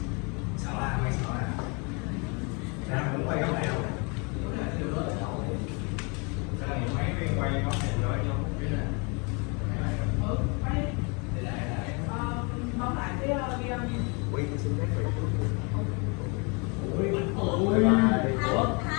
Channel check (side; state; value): right; quieter; 32.1 dB